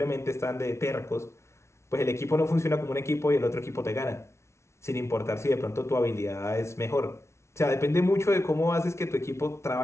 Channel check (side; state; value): right; late; 0.13 ms